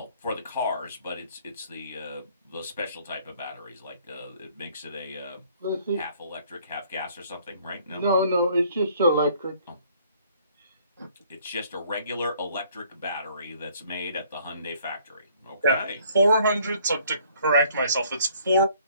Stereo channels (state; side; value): inverted; both; correlation -0.60